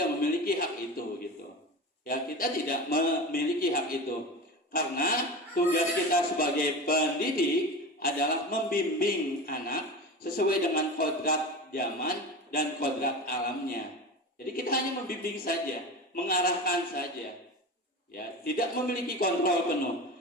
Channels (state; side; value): normal; both; correlation 0.28